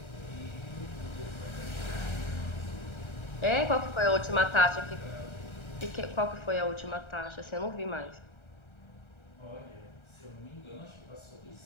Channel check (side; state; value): right; late; 1.3 ms